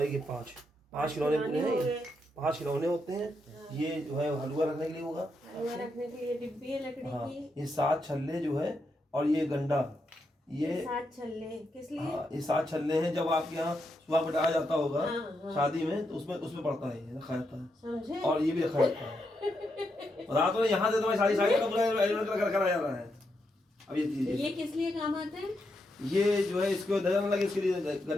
ये 5 खिलौने पूरे हैं। ये 5 खिलौने होते हैं। ये जो है हलवा रखने के लिए होगा, हलवा रखने के लिए डिब्बी है लकड़ी हाँ। की। ये 7 छल्ले जो है, और ये गंडा, ये 7 छल्ले किस लिए? हाँ, ये 7 छल्ले हैं। जब आपके यहाँ सुबह बिठाया जाता होगा हाँ। शादी में, तो उसमें पड़ता है, ये रखा जाता है। समझे? और ये भी रखा जाता है। बता तो यहाँ से तुम्हारी सारी का पूरा अरेंजमेंट करा जा रहा है। अब ये चीज, ये किस लिए काम आते हैं? ये जो है इसको नजर न लगे, इसके लिए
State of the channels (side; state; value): both; normal; correlation 0.82